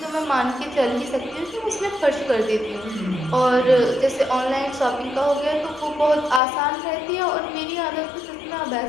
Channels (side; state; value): right; drops out; at 6.4 s